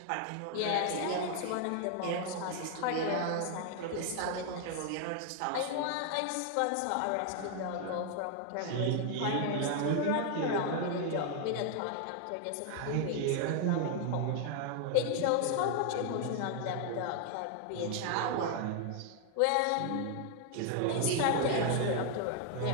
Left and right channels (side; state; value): both; different; correlation 0.00